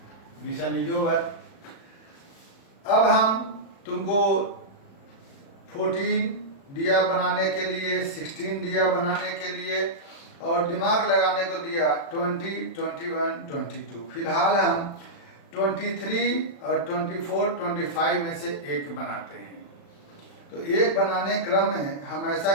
Mission is over. अब हम तुमको 14 दिया बनाने के लिए, 16 दिया बनाने के लिए और दिमाग लगाने को दिया 20, 21, 22। फिलहाल हम 23 और 24, 25 में से एक बनाते हैं। तो एक बनाने क्रम में हम ऐसा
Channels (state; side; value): late; right; 36 ms